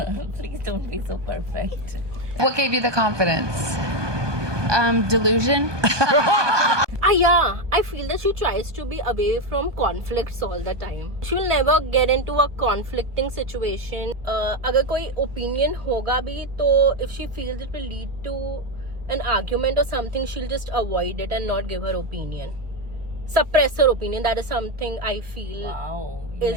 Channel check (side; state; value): left; late; 1.2 ms